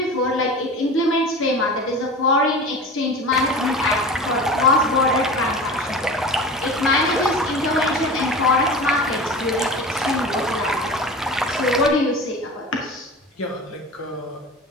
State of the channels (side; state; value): both; normal; correlation 0.34